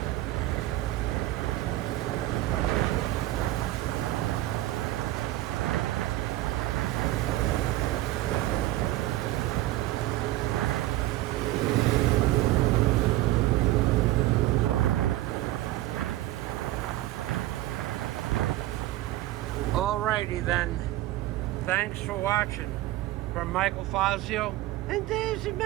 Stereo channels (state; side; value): quieter; left; 16.0 dB